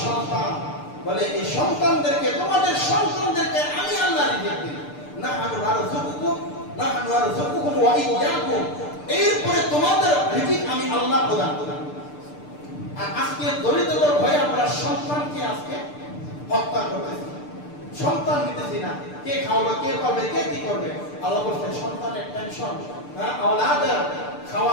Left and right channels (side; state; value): right; late; 6.7 ms